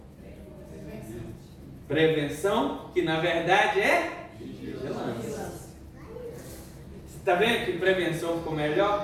prevenção, que na verdade é vigilância. Está vendo que prevenção ficou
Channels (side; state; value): both; identical; correlation 1.00